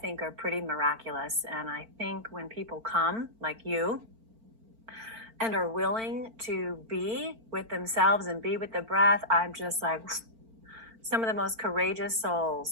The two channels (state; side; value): late; left; 4.4 ms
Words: are pretty miraculous. And I think when people come, like you, and are willing to be with themselves and be with the breath, I'm just like, some of the most courageous